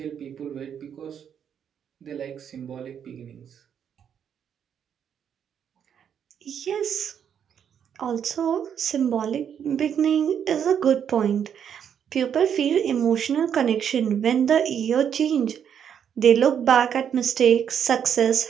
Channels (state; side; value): quieter; left; 8.4 dB